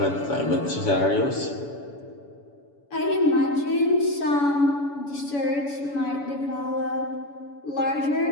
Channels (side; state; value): right; late; 7.0 ms